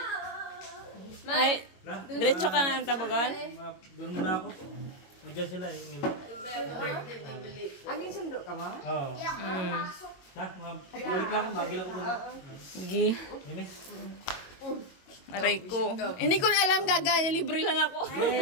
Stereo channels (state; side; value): late; right; 22 ms